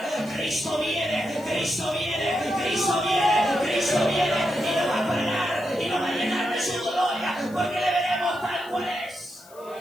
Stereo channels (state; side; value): noise; left; hiss, 24 dB below the sound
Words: Cristo viene, Cristo viene, Cristo viene, Cristo viene, y lo va a pagar, y lo va a llenar de su gloria, porque le veremos tal cual es.